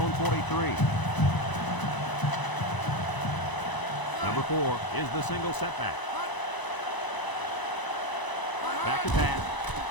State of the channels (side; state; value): right; late; 1.0 ms